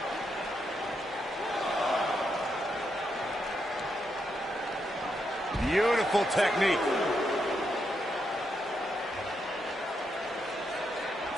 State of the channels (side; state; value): both; normal; correlation 0.81